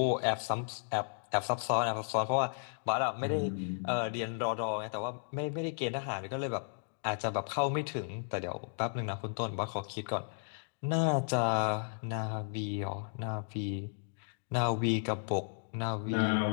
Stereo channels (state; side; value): silent; right; digital silence